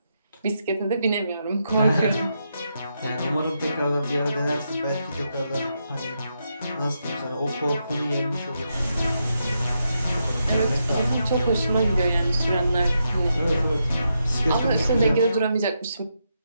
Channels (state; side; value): inverted; both; correlation -0.83